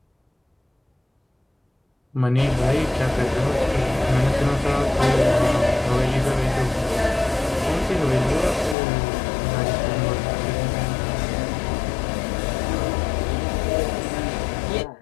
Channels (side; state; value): right; drops out; at 8.8 s